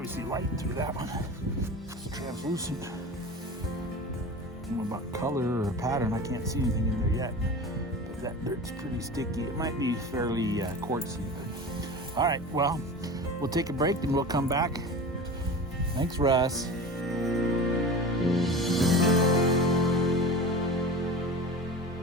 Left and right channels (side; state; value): both; normal; correlation 0.33